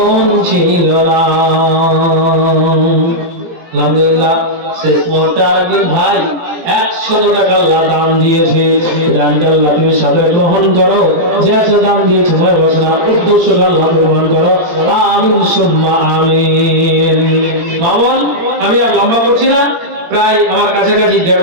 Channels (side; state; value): left; late; 17 ms